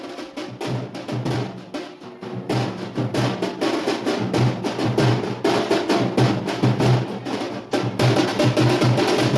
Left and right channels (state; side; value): identical; both; correlation 1.00